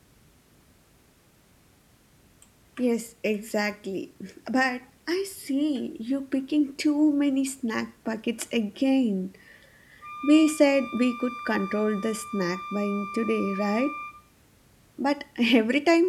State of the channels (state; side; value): identical; both; correlation 1.00